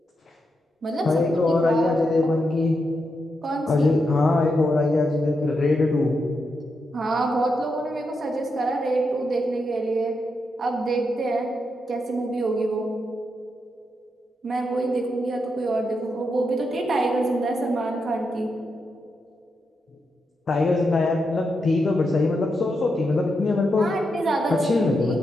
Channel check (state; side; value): normal; both; correlation 0.84